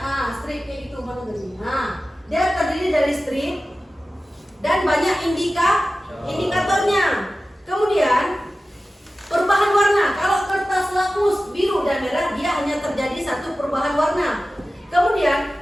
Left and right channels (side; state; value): both; normal; correlation 0.95